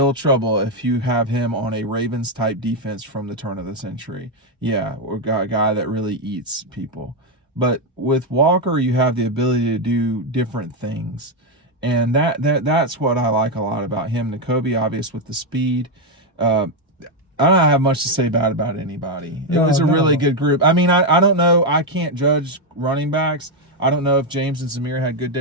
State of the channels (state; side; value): normal; both; correlation 0.04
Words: trouble if you have him on a Ravens-type defense from the turn of the century. Yeah, or a guy that really eats people. But with Walker, you have the ability to do different things. And that's what I like a lot about him. Nakobe, obvious with the speed. I don't have much to say bad about anybody. It was a really good group. I mean, I don't know. I can't judge running backs. I don't know if James and Zamir had good